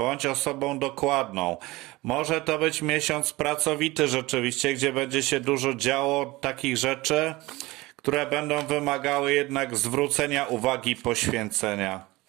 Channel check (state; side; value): quieter; left; 20.7 dB